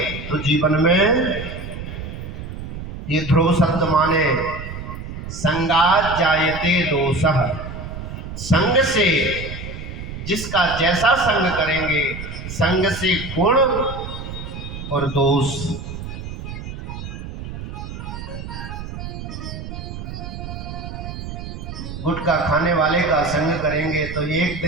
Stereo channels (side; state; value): right; noise; rumble, 9 dB below the sound